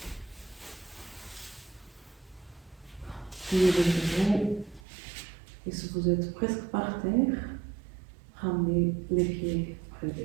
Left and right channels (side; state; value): left; drops out; at 4.8 s